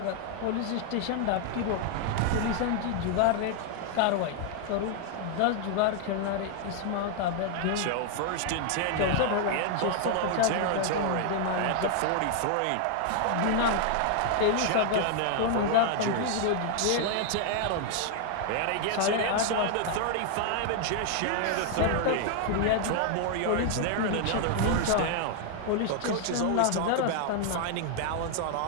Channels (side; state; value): both; different; correlation 0.00